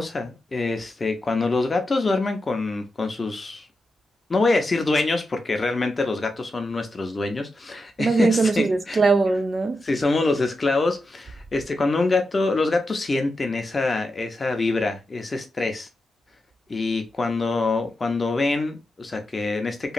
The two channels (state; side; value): normal; both; correlation 0.88